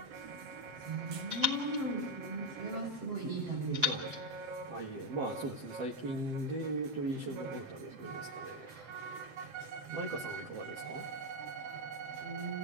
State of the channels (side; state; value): left; late; 7.7 ms